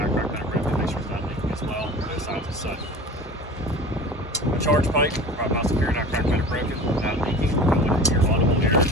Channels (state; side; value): normal; both; correlation 0.38